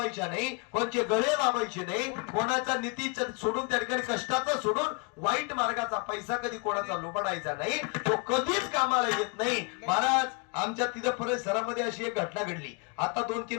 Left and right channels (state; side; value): quieter; right; 32.7 dB